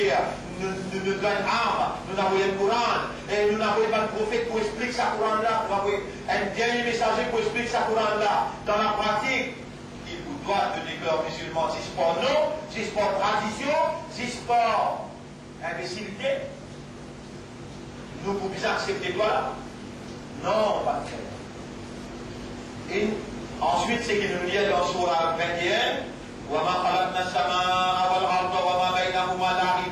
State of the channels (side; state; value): both; identical; correlation 1.00